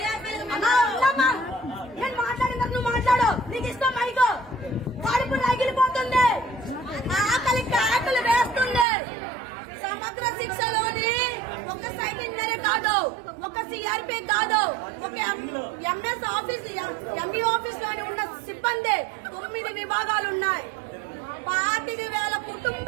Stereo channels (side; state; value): left; drops out; at 8.8 s